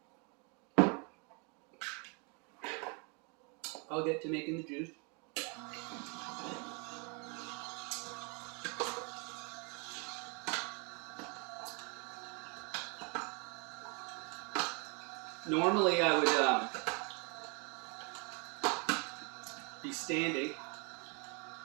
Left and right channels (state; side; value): quieter; left; 33.8 dB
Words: I'll get to making the juice. Normally I would standing,